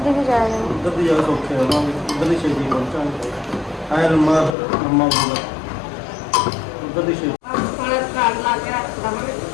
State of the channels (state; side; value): drops out; right; at 4.5 s